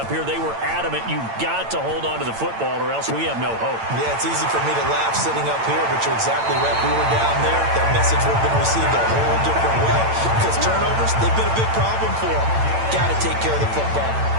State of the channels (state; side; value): late; left; 8.9 ms